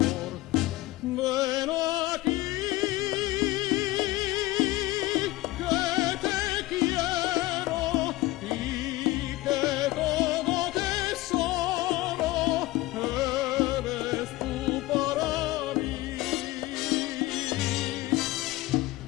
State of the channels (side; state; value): right; quieter; 18.5 dB